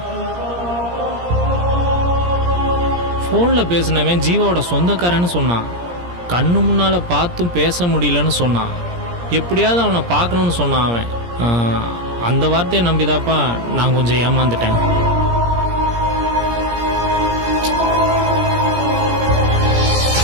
ஃபோனில் பேசினவன் ஜீவாவோட சொந்தக்காரன்னு சொன்னான். கண்ணு முன்னால் பார்த்தும் பேச முடியலன்னு சொன்னான். எப்படியாவது அவனை பார்க்கணுன்னு சொன்னான் அவன். அந்த வார்த்தையை நம்பிதாப்பா நான் கொஞ்சம் ஏமாந்துட்டேன்.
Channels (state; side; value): late; left; 17 ms